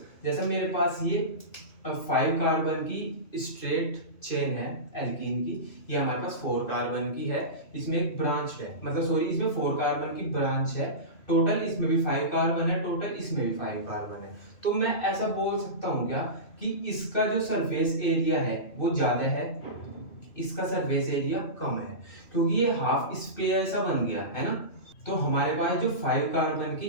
जैसे मेरे पास ये 5 कार्बन की स्ट्रेट चेन है एल्कीन की, ये हमारे पास 4 कार्बन की है, इसमें एक ब्रांच है, मतलब सॉरी इसमें 4 कार्बन की ब्रांच है, टोटल इसमें भी 5 कार्बन है, टोटल इसमें भी 5 कार्बन है। तो मैं ऐसा बोल सकता हूँ क्या कि इसका जो सरफेस एरिया है वो ज्यादा है, इसका सरफेस एरिया कम है, क्योंकि ये हाफ स्पेयर सा बन गया है ना। तो हमारे पास जो 5 कार्बन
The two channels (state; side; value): late; right; 2.6 ms